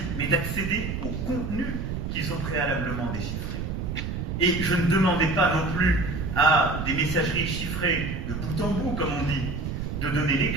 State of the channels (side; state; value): right; noise; rumble, 4 dB below the sound